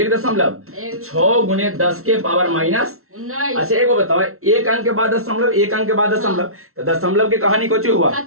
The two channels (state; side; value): late; left; 0.63 ms